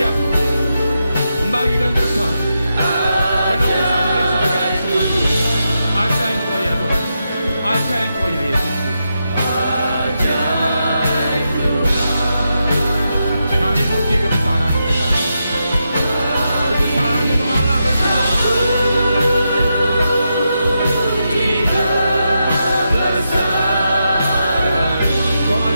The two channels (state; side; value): inverted; both; correlation -0.85